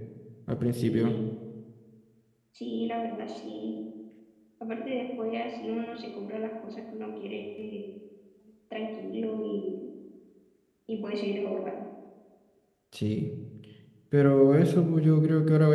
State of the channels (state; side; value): identical; both; correlation 1.00